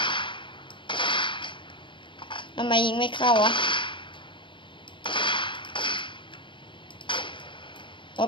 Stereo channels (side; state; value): right; late; 0.24 ms